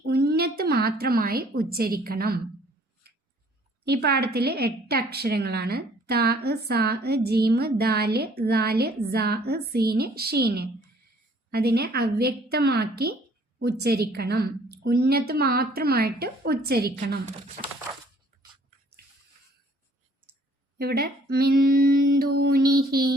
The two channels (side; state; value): both; normal; correlation 0.59